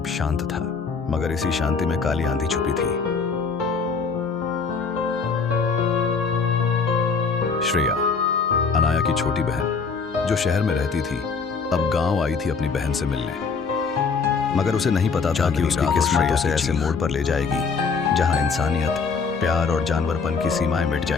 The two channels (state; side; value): quieter; right; 5.2 dB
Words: शांत था, मगर इसी शांति में काली आंधी छुपी थी। श्रेया, अनाया की छोटी बहन, जो शहर में रहती थी, अब गांव आई थी अपनी बहन से मिलने। मगर उसे नहीं पता था कि उसकी किस्मत उसे ऐसे मोड़ पर ले जाएगी जहां इंसानियत, प्यार और जानवरपन की सीमाएं मिट